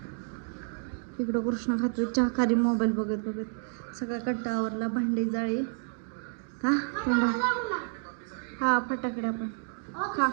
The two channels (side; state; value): left; silent; 58 dB below the other